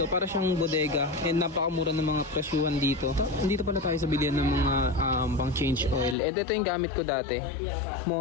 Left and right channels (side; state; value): right; drops out; at 6.2 s